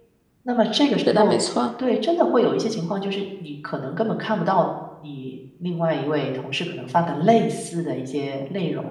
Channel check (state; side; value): identical; both; correlation 1.00